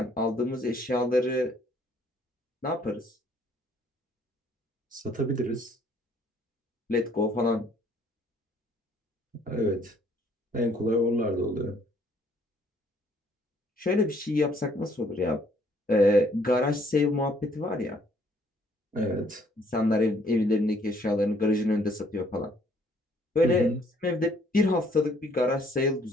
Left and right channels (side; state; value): both; normal; correlation 0.64